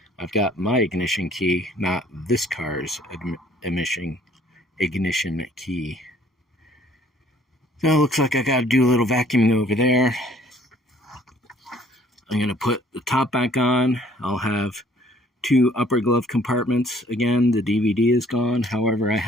I've got my ignition key, not this car's ignition key. So it looks like I got to do a little vacuuming over there. I'm going to put the top back on. I'll have two upper glove compartments. Again, the DVD is gone. However, I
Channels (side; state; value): both; normal; correlation 0.58